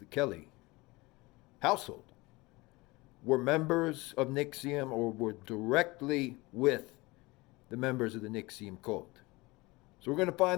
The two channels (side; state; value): right; quieter; 22.9 dB